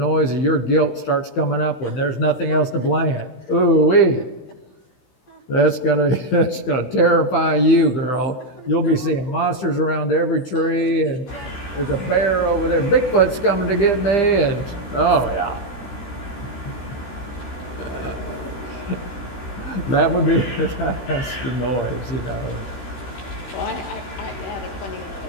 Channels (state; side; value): late; right; 16 ms